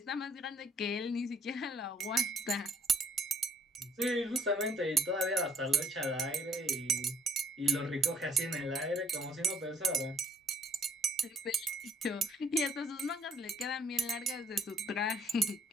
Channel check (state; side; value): normal; both; correlation 0.63